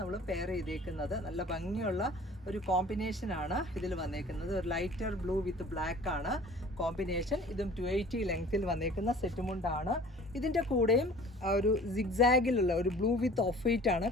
പെയർ ചെയ്തേക്കുന്നത്. നല്ല ഭംഗിയുള്ള ഒരു കോമ്പിനേഷനാണ് ഇതിൽ വന്നേക്കുന്നത്. ഒരു ലൈറ്റർ ബ്ലൂ വിത്ത് ബ്ലാക്ക് ആണ് കോമ്പിനേഷൻ. ഇതും 280 ലെങ്ത്തിൽ വന്നേക്കുന്ന സെറ്റ് മുണ്ടാണ്. ഇതിൻ്റെ കൂടെയും ഒരു സിഗ്സാഗിലുള്ള ഒരു ബ്ലൂ വിത്ത് ഓഫ് വൈറ്റ് ആണ്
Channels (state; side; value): normal; both; correlation 0.47